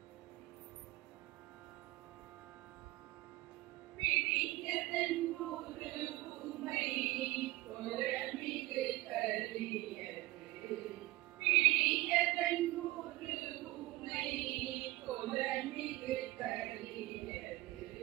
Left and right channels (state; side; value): quieter; left; 19.1 dB